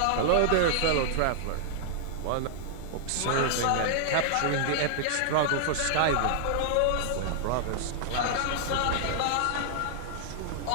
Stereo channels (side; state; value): both; different; correlation -0.01